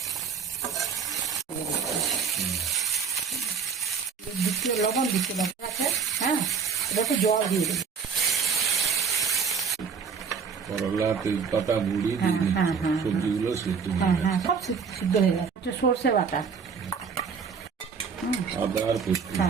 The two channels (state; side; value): quieter; left; 6.1 dB